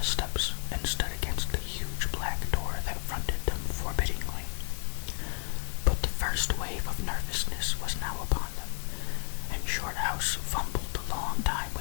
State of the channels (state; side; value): silent; right; digital silence